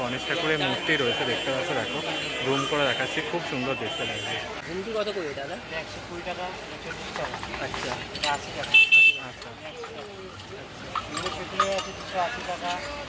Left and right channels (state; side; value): identical; both; correlation 1.00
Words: গণেশ ঠাকুরের মূর্তি রয়েছে দেখতে পাচ্ছ দেখো, জুম করে দেখাচ্ছি, খুব সুন্দর দেখতে লাগছে। ঝুমকি কত করে দাদা? 120 টাকা 40 টাকা। আচ্ছা 80 টাকা। আচ্ছা এগুলো সেগুলো আছে 280 টাকা,